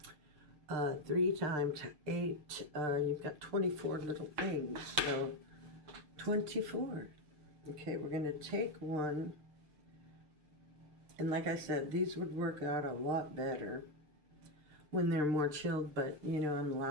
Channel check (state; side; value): late; left; 6.6 ms